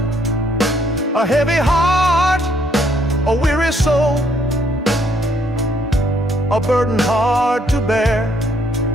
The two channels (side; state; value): both; normal; correlation 0.68